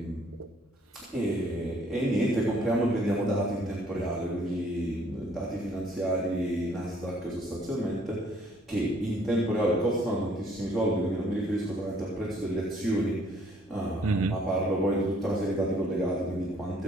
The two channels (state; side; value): normal; both; correlation 0.62